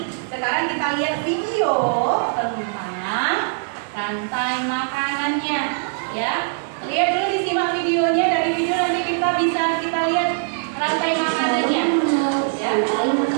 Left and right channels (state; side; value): silent; left; digital silence